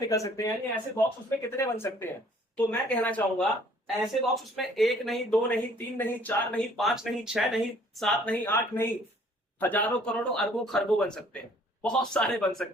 सकते हैं, यानी ऐसे बॉक्स उसमें कितने बन सकते हैं। तो मैं कहना चाहूंगा ऐसे बॉक्स उसमें एक नहीं, दो नहीं, तीन नहीं, चार नहीं, पांच नहीं, छह नहीं, सात नहीं, आठ नहीं, हजारों करोड़ों अरबों खरबों बन सकते हैं, बहुत सारे बन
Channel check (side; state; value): both; normal; correlation 0.58